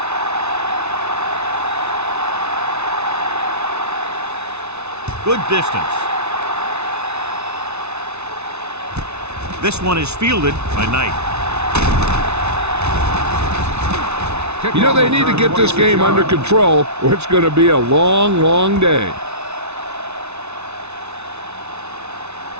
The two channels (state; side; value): late; left; 0.81 ms